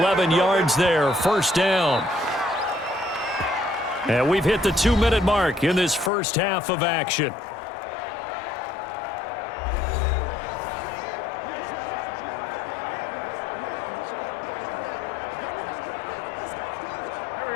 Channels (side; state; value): right; drops out; at 6.1 s